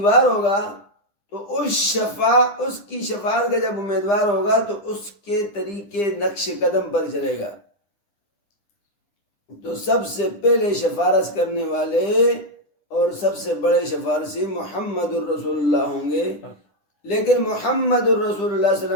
ہوگا تو اس کی شفاعت کا جب امیدوار ہوگا تو اس کے طریقے نقش قدم پر چلے گا. تو سب سے پہلے شفارس کرنے والے اور سب سے بڑے شفارسی محمد الرسول اللہ ہوں گے. لیکن محمد الرسول اللہ صلی اللہ علیہ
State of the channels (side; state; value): right; late; 10 ms